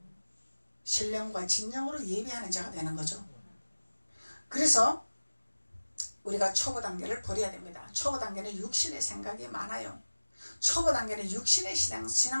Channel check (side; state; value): both; inverted; correlation -1.00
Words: 신령과 진정으로 예배하는 자가 되는 거죠. 그래서 우리가 초보 단계를 버려야 됩니다. 초보 단계는 육신의 생각이 많아요. 초보 단계는 육신의